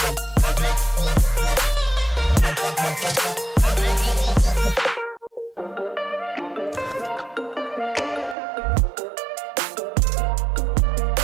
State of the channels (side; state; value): left; drops out; at 8.3 s